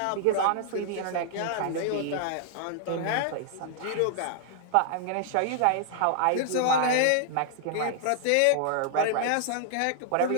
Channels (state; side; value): different; both; correlation -0.01